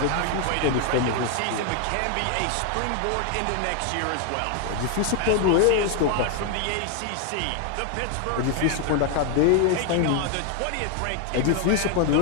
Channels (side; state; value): both; different; correlation 0.00